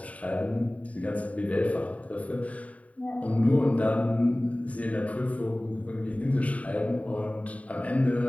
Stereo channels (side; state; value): right; late; 0.068 ms